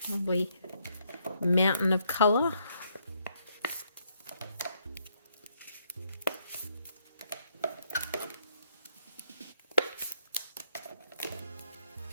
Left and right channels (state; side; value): inverted; both; correlation -0.73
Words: Lovely mountain of colour.